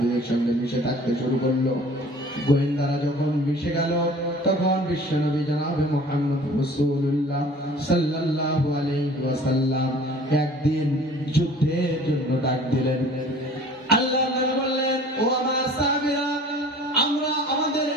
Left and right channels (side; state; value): both; normal; correlation 0.48